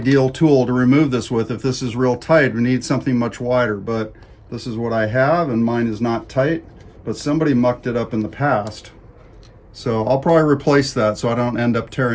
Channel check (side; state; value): both; identical; correlation 1.00